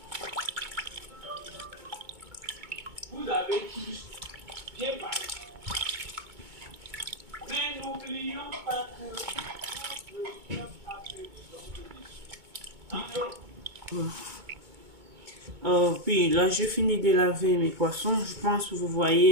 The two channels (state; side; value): late; left; 2.2 ms